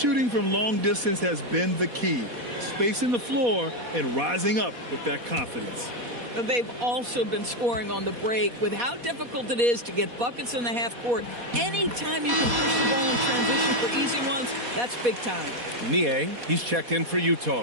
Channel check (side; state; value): left; late; 4.2 ms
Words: from long distance has been the key. Spacing the floor and rising up with that confidence. They've also been scoring on the break. With how difficult it is to get buckets in the half court, anytime you can push the ball in transition for easy ones, that's big time. Niang, he's checked in for